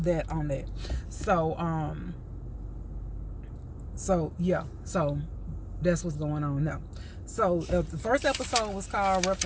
on that. So yeah, so that's what's going on now. So the first episode was called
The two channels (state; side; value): identical; both; correlation 1.00